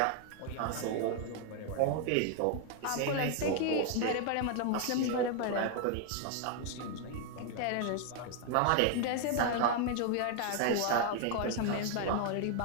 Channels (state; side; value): different; both; correlation 0.00